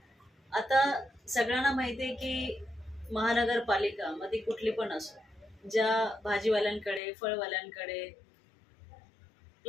आता सगळ्यांना माहिती आहे की महानगरपालिका मध्ये कुठली पण असो, ज्या भाजीवाल्यांकडे फळवाल्यांकडे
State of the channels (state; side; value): drops out; right; at 7.0 s